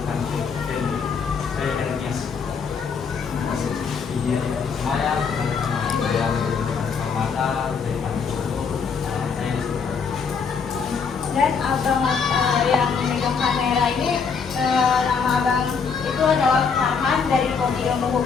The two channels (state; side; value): quieter; right; 5.8 dB